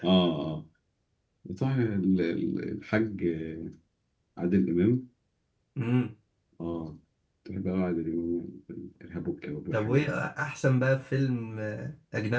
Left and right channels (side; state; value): both; identical; correlation 1.00